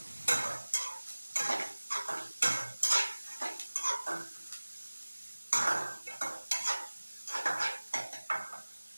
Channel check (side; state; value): both; inverted; correlation -1.00